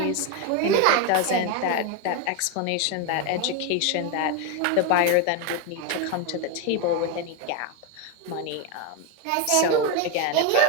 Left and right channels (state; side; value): different; both; correlation 0.02